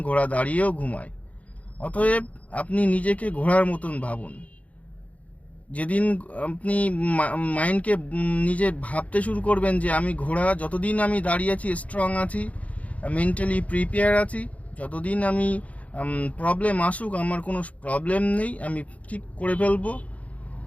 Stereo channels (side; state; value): right; late; 0.068 ms